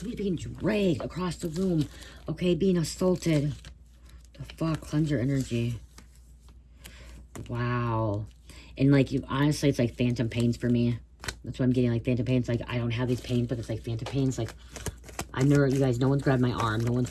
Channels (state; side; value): identical; both; correlation 1.00